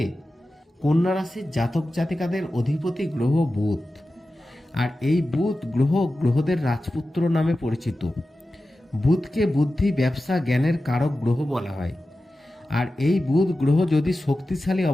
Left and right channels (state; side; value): normal; both; correlation 0.94